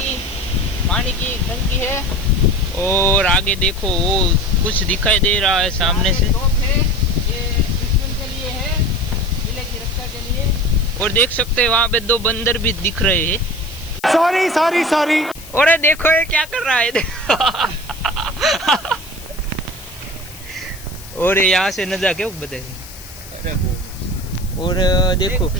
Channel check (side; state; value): left; noise; hiss, 18 dB below the sound